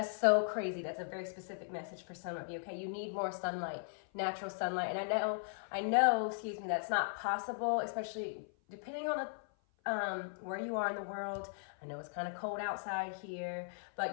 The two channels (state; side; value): silent; right; 53 dB below the other